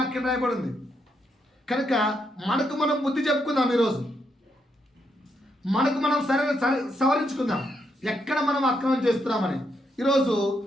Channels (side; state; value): both; normal; correlation 0.79